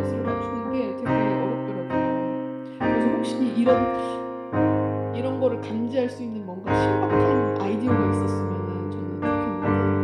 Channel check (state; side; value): identical; both; correlation 1.00